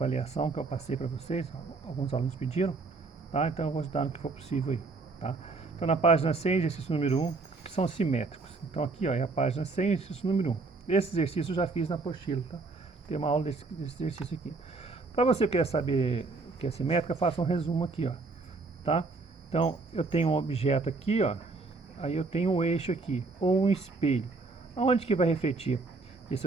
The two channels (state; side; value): quieter; left; 3.8 dB